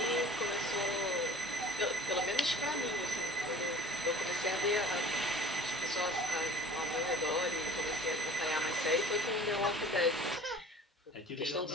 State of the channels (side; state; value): both; normal; correlation 0.47